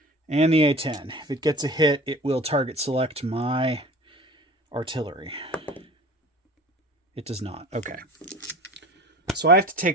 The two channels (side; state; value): both; normal; correlation 0.40